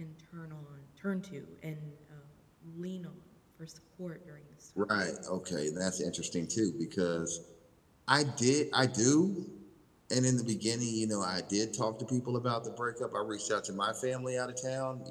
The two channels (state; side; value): identical; both; correlation 1.00